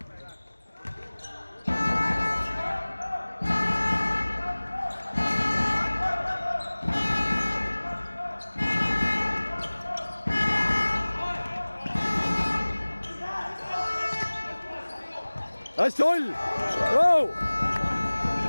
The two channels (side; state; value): both; inverted; correlation -1.00